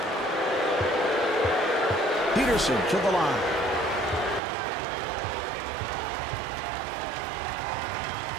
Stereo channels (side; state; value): left; drops out; at 4.4 s